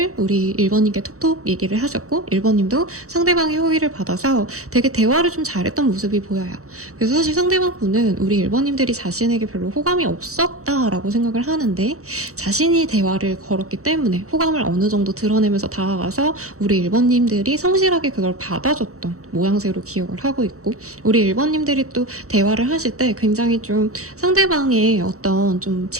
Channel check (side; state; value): left; late; 0.65 ms